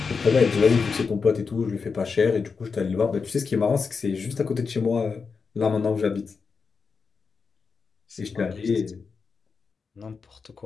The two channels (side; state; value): right; quieter; 5.1 dB